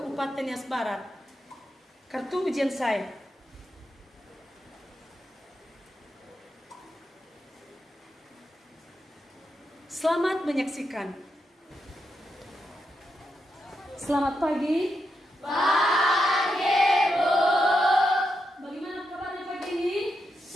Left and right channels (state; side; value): normal; both; correlation 0.84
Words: Nias Barat. Kartu ujian saya. Selamat menyaksikan. Selamat pagi. Pagi, Bu. Bagaimana kabarnya pagi ini?